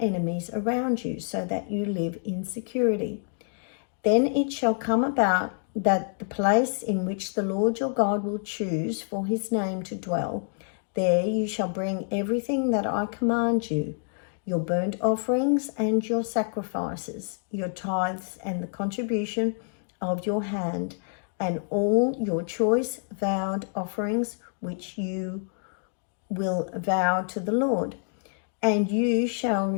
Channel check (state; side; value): silent; right; 60 dB below the other